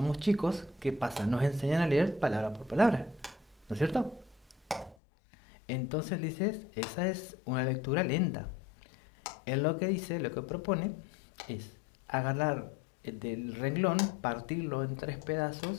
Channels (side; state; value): right; drops out; at 5.0 s